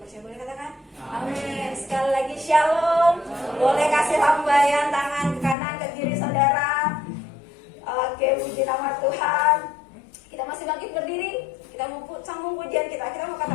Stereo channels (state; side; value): drops out; right; at 5.6 s